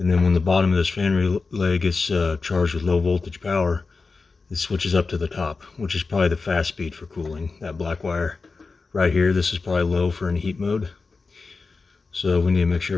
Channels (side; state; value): right; quieter; 4.2 dB